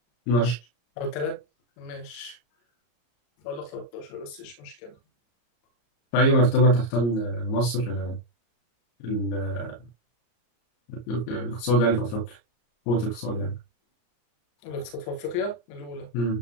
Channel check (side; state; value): right; late; 34 ms